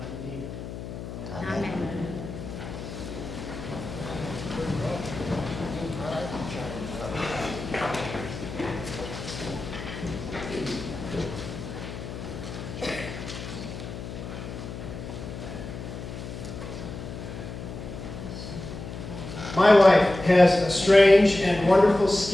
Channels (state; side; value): noise; left; hum, 9 dB below the sound